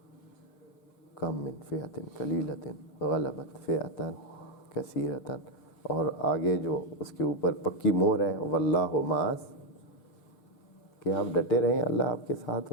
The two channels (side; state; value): right; late; 6.8 ms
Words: کم من فئۃ قلیلۃ غلبت فئۃ کثیرۃ، اور آگے جو اس کے اوپر پکی مہر ہے واللہ مع، کہ آپ ڈٹے رہیں، اللہ آپ کے ساتھ